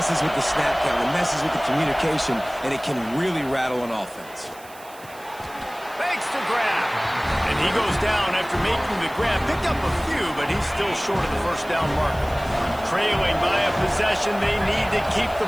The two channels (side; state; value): right; noise; hiss, 21 dB below the sound